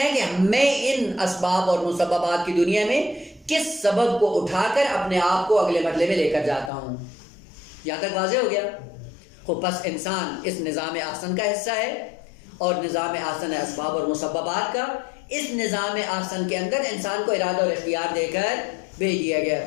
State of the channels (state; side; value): drops out; right; at 6.7 s